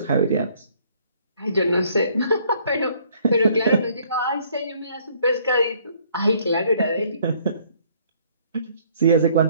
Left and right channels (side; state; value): both; inverted; correlation -0.62